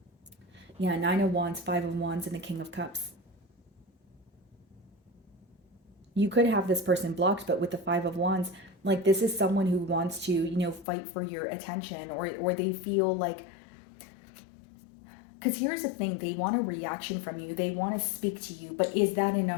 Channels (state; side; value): drops out; right; at 10.9 s